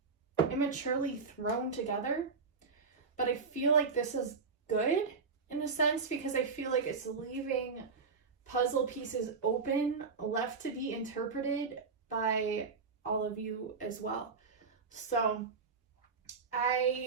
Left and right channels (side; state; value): left; quieter; 4.9 dB